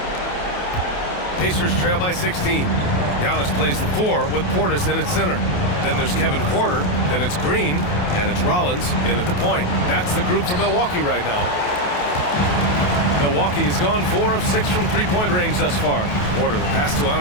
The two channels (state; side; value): late; right; 28 ms